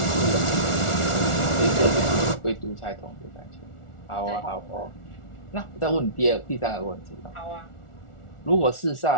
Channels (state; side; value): late; right; 1.4 ms